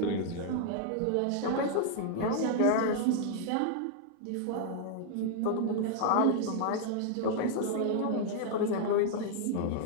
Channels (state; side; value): different; both; correlation 0.00